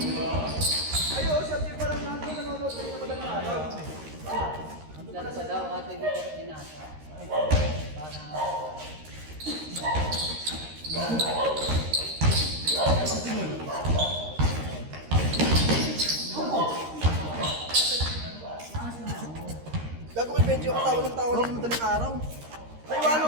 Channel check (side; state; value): left; late; 13 ms